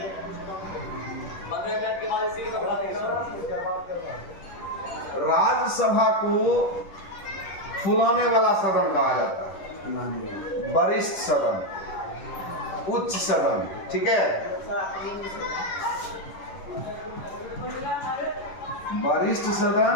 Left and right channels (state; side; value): late; right; 10 ms